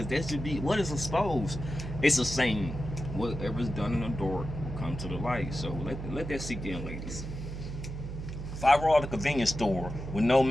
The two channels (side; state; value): right; noise; hum, 7 dB below the sound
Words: that should be, what is exposed? It's a saying, whatever's done in the dark will come to the light. So let that sink in, ladies. If I roll out the convenience store with no